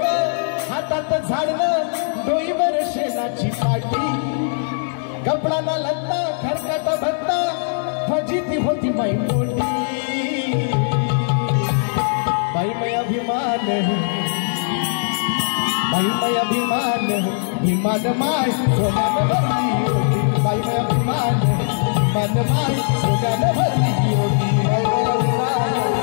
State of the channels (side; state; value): right; silent; digital silence